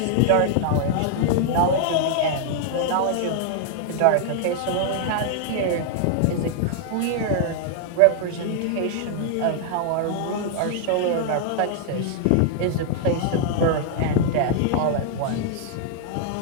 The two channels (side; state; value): both; different; correlation 0.00